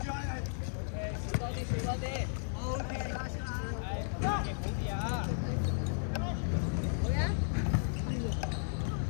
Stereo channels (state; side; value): silent; right; 55 dB below the other